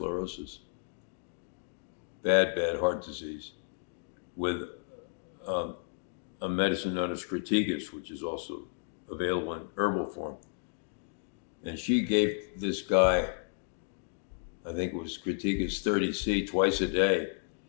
bad heart disease, with a medicine known as Cratigas, which is also available in herbal form. And she gave this guy, I think it was Cratigas 30C, twice a day.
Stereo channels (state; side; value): silent; right; digital silence